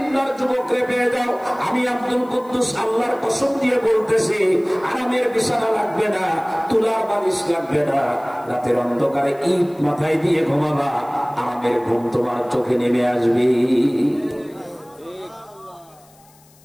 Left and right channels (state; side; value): noise; left; hiss, 29 dB below the sound